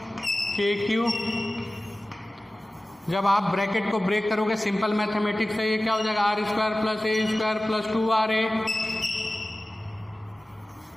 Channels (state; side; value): normal; both; correlation 0.96